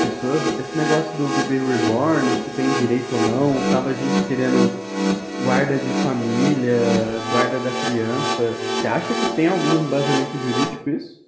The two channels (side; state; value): both; identical; correlation 1.00